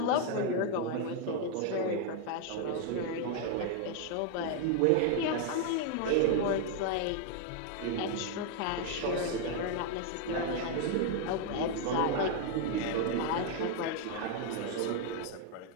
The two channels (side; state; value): both; different; correlation 0.00